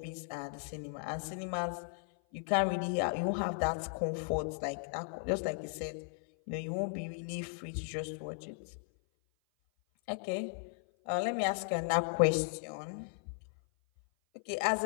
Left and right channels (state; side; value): silent; right; 54 dB below the other